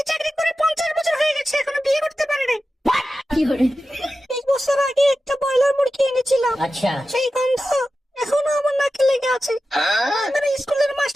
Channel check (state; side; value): normal; both; correlation 0.93